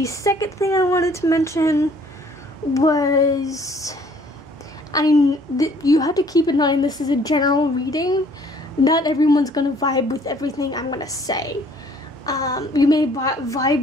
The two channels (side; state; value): both; normal; correlation 0.59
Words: second thing I wanted to mention was you have to keep in mind this is a general reading. Not everyone's gonna vibe with everything I'm gonna say. You may